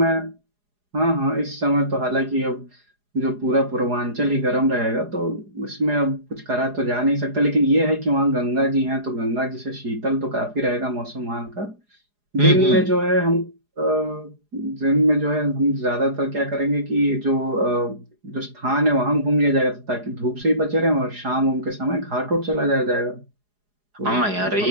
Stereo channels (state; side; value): late; left; 4.8 ms